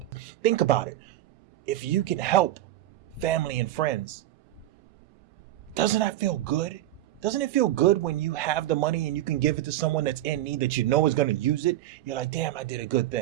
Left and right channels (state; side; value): quieter; left; 14.2 dB